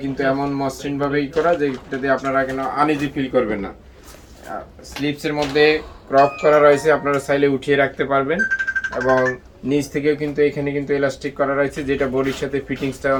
কিন্তু এমন মসৃণভাবেই করা যে এটাতে আপনারা কেন আনইজি ফিল করবেন না। স্লিপসের মধ্যে ক্রপ করা রয়েছে, আপনারা চাইলে উঠিয়ে রাখতে পারবেন এবং নিচ থেকেও কিন্তু এখানে কিন্তু এলাস্টিক করা রয়েছে, যেটা বডির সাথে ফিটিংসটা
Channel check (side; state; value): both; identical; correlation 1.00